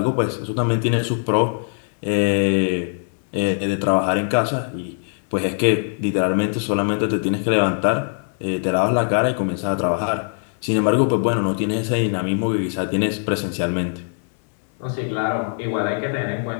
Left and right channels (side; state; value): right; silent; digital silence